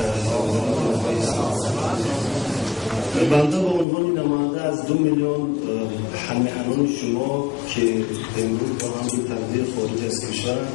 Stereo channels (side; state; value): right; drops out; at 3.9 s